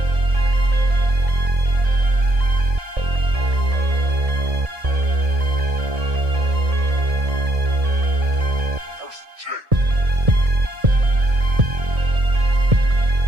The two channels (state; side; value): late; left; 1.7 ms